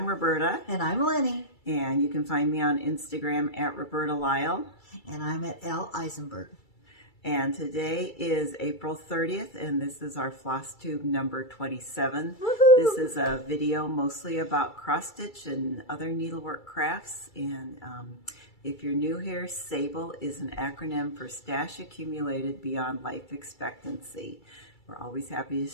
Roberta. And I'm Lenny. And you can find me on Instagram at Roberta Lyle. And I'm at L. Eisenberg. And today is April 30th, and this is our FlossTube number 27. Woohoo! This is a video mostly about cross-stitch and other needlework crafts. And if you're new here, SABLE is an acronym for Stash Accumulated Beyond Life Expectancy. We're always happy to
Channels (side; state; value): right; late; 2.3 ms